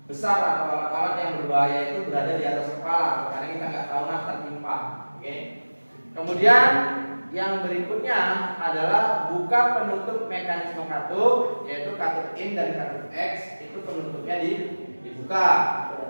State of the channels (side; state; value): both; inverted; correlation -1.00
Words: besar atau alat-alat yang berbahaya itu berada di atas kepala, karena kita nggak tahu nah tertimpa. Oke. Kemudian yang berikutnya adalah buka penutup mekanisme katup, yaitu katup in dan katup X, itu penutupnya dibuka.